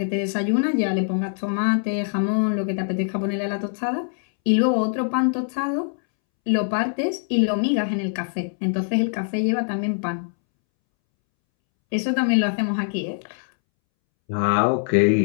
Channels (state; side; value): silent; right; 63 dB below the other